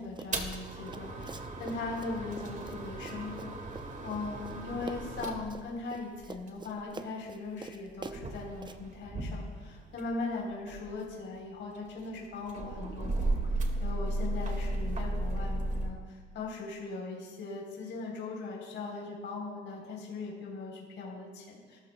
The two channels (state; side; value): normal; both; correlation 0.62